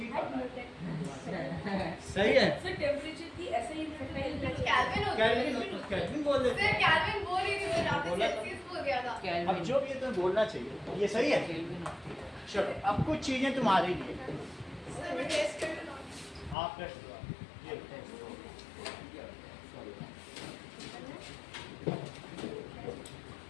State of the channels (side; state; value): right; drops out; at 16.6 s